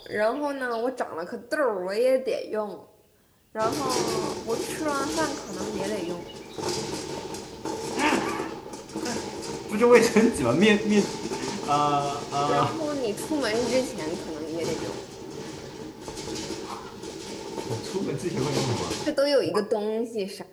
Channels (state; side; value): identical; both; correlation 1.00